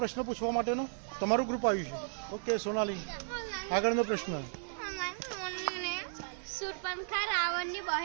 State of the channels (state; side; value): silent; left; digital silence